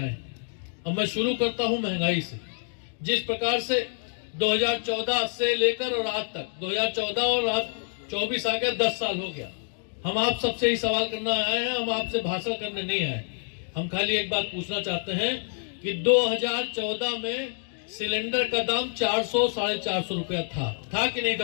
अब मैं शुरू करता हूं महंगाई से। जिस प्रकार से 2014 से लेकर और आज तक 2014 और आज 24 आ गया, 10 साल हो गया। हम आप सबसे ही सवाल करना आए हैं, हम आपसे भाषण करने नहीं आए। हम खाली एक बात पूछना चाहते हैं कि 2014 में सिलेंडर का दाम 400-450 रुपया था कि नहीं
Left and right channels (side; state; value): right; silent; 60 dB below the other